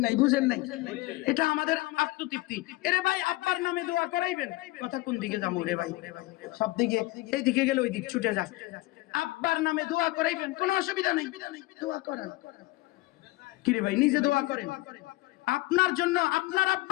নাই? এটা আমাদের আত্মতৃপ্তি। এরে ভাই আব্বার নামে দোয়া করাইবেন, কথা কোন দিকে যাবো রে ভাই? সব দিকে, এই দিকে গেলে ওই দিক ছুটে যায়। আব্বার নামে দোয়া করাইবেন, কোনো অসুবিধা নেই, দোয়া করেন। কি রে ভাই, নিজে দোয়া করেন। আপনার জন্য আপনার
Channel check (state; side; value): quieter; right; 20.1 dB